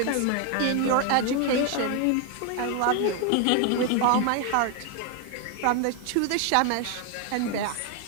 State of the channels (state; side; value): different; both; correlation 0.01